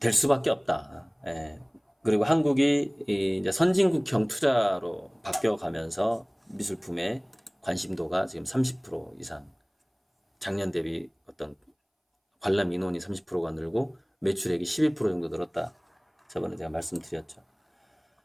수밖에 없다. 예. 그리고 한국이 이제 선진국형 투자로 바뀌어가면서 미술품의 관심도가 지금 30% 이상, 작년 대비 어떤 관람 인원이 30%가 늘고 매출액이 12% 정도 늘었다. 저번에 제가 말씀드렸죠.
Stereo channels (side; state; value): both; identical; correlation 1.00